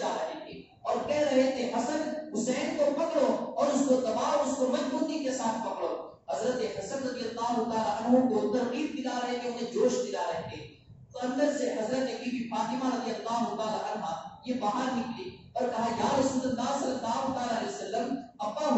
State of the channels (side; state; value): both; identical; correlation 1.00